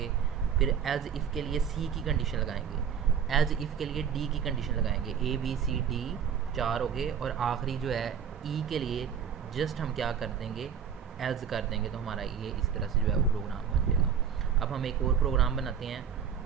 फिर एज इफ़ के लिए सी की कंडीशन लगाएंगे, एज इफ़ के लिए डी की कंडीशन लगाएंगे। ए बी सी डी 4 हो गए, और आखिरी जो है ई के लिए जस्ट हम क्या कर देंगे? एल्स कर देंगे, तो हमारा ये इस तरह से जो है वो प्रोग्राम बन जाएगा। अब हम एक और प्रोग्राम बनाते हैं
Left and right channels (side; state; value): left; quieter; 7.6 dB